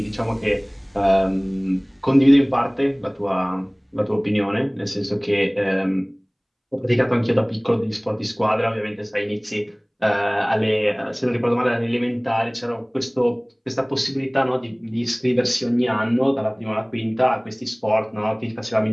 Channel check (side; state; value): both; identical; correlation 1.00